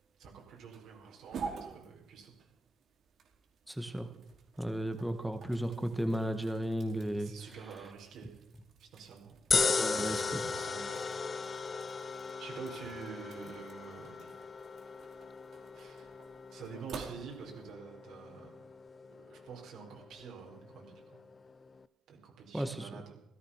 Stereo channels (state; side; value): normal; both; correlation 0.88